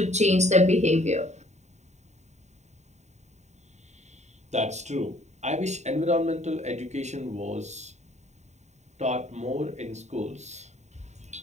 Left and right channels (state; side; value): late; left; 0.33 ms